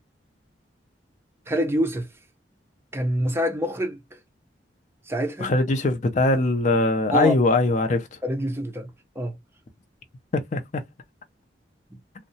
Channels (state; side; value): normal; both; correlation 0.46